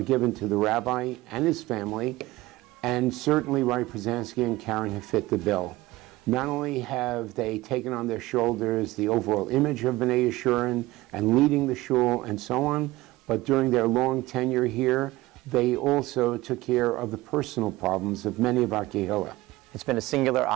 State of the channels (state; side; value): quieter; left; 18.8 dB